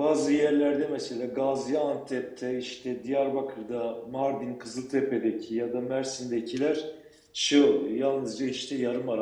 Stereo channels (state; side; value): identical; both; correlation 1.00